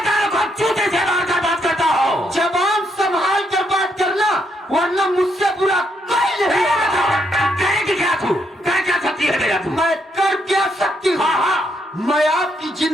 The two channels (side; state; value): both; normal; correlation 0.76